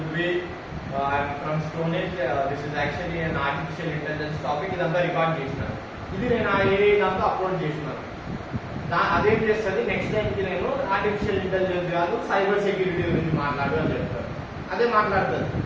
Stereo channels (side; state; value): both; identical; correlation 1.00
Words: I'm from stone age. This is actually an artificial intelligence topic. ఇదంతా రికార్డ్ చేసినాను. ఇది నేను ఆ ఇదంతా అప్లోడ్ చేసినాను. అదేం చేస్తుంది, నెక్స్ట్ టైంకి నేను ఆర్టిఫిషియల్ ఇంటెలిజెన్స్ కాదు సైబర్ సెక్యూరిటీ గురించి మాట్లాడు అని చెప్తాను. అదే మాట్లాడుతుంది,